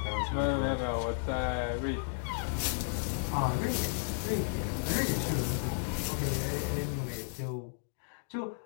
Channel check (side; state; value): right; silent; digital silence